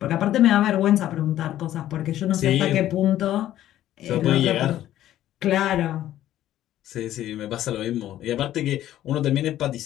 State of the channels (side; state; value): right; quieter; 12.9 dB